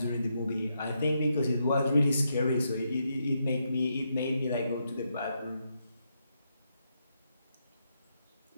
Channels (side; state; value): both; inverted; correlation -0.81